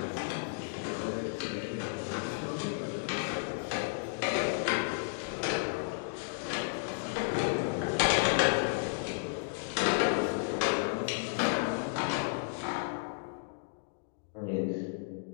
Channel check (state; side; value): silent; right; digital silence